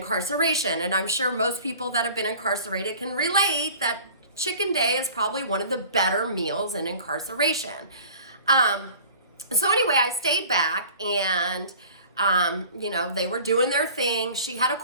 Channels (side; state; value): both; inverted; correlation -0.45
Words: And I'm sure most people that have been incarcerated can relate that chicken day is probably one of the better meals in incarceration. So anyway, I stayed back and, they were doing their thing. She had a